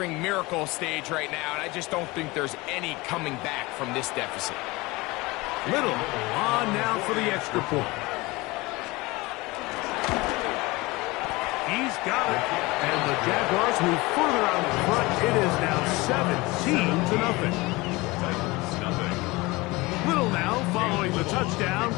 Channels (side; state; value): right; quieter; 22.5 dB